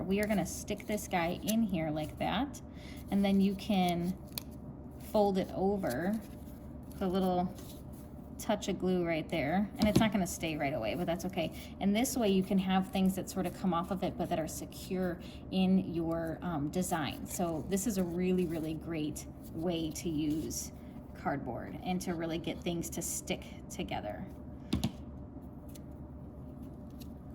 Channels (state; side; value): identical; both; correlation 1.00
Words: We are gonna stick this guy in here like that, and then you can fold it over, put a little touch of glue right there, and it's not going to stay right away, but that's okay. And this way you can have things that sort of come off of it but that are secure in your design. So this is a really, really great way to use cardboard and to really get things to stick together.